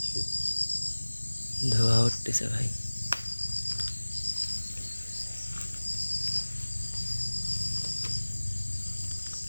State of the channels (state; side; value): inverted; both; correlation -1.00